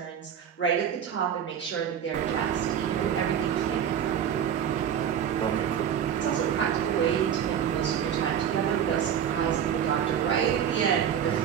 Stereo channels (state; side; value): quieter; left; 8.9 dB